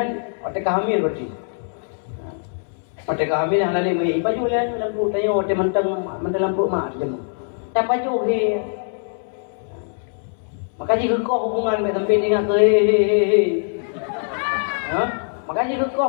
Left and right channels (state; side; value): silent; right; 64 dB below the other